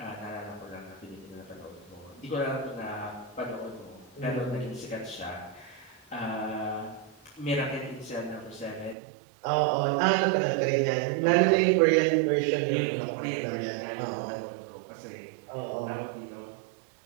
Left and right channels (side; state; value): left; drops out; at 9.0 s